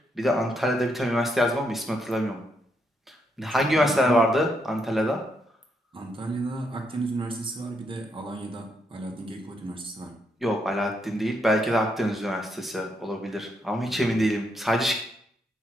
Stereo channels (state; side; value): normal; both; correlation 0.77